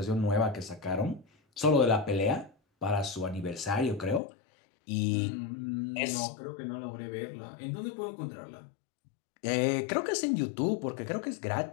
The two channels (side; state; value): right; drops out; at 4.2 s